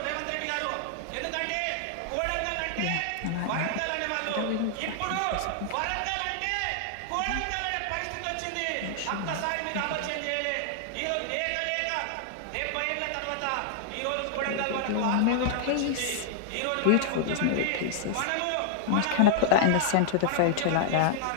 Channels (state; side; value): different; both; correlation -0.01